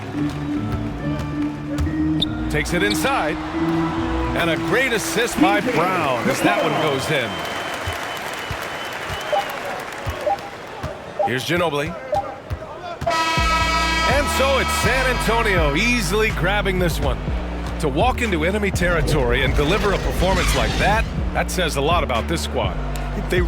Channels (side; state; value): both; identical; correlation 1.00